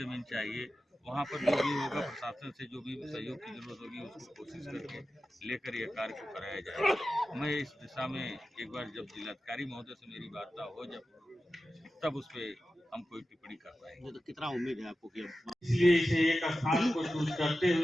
चाहिए। वहाँ पर जो भी होगा, प्रशासन से जो भी सहयोग की जरूरत होगी उसको कोशिश करके लेकर यह कार्य को कराया जाएगा। मैं इस दिशा में एक बार जब जिलाधिकारी महोदय से मेरी वार्ता हो तब उस पर हम कोई टिप्पणी कर पाएंगे। तो कितना उम्मीद है आपको कि इसलिए इसे एक स्थान को चूज करते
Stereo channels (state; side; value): normal; both; correlation 0.93